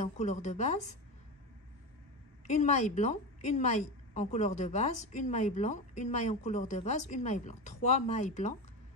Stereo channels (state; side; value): normal; both; correlation 0.20